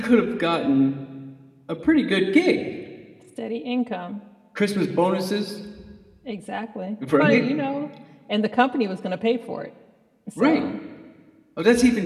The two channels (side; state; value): both; identical; correlation 1.00